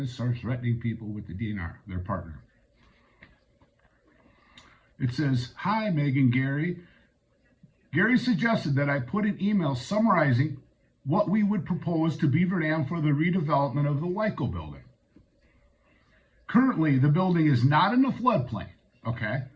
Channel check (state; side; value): identical; both; correlation 1.00